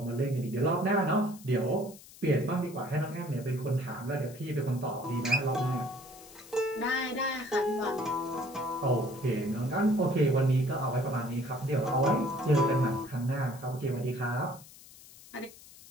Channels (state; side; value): noise; left; hiss, 20 dB below the sound